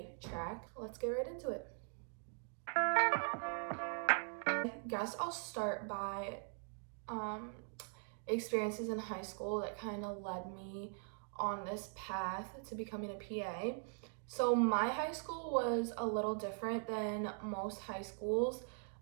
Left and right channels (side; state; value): left; silent; 50 dB below the other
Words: track. Let's get right into it. I guess I'll start by experiences in high school that kind of led me on this path to becoming a PA. So my high school was a little different than most high schools.